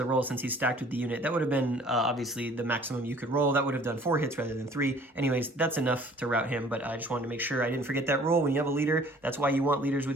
roll since he's stacked with the unit. That would have been, obviously, the maximum you could roll. That would have done 4 hits rather than 3. Anyways, that's enough to rout him, but I just wanted to make sure I didn't forget that rule. When you have a leader, that's why you want leaders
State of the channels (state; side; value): normal; both; correlation 0.53